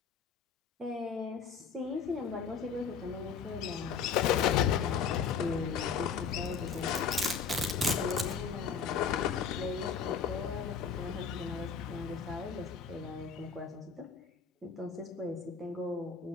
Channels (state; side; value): quieter; right; 6.1 dB